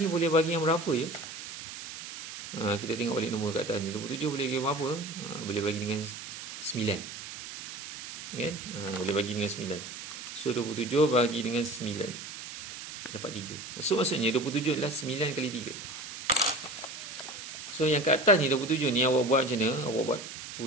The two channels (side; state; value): right; noise; hiss, 10 dB below the sound